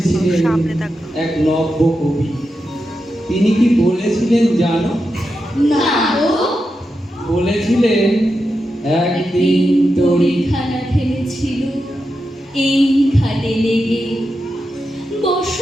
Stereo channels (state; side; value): normal; both; correlation 0.88